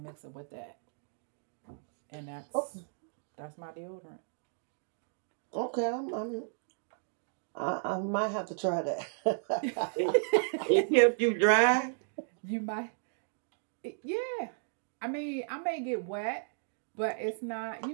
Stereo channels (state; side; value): silent; left; digital silence